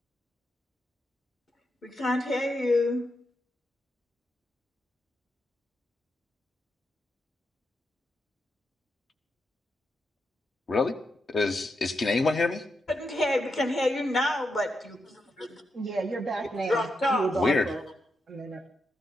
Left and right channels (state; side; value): normal; both; correlation 0.84